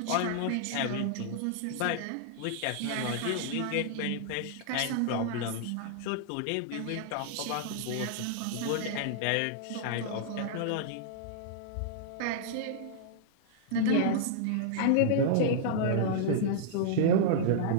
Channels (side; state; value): both; different; correlation -0.01